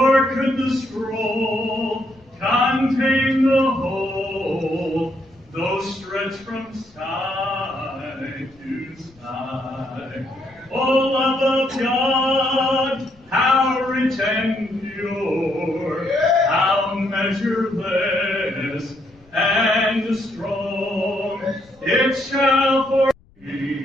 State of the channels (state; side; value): noise; left; rumble, 30 dB below the sound